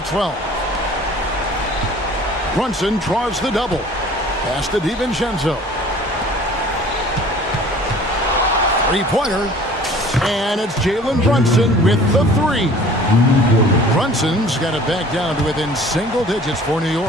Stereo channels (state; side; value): normal; both; correlation 0.48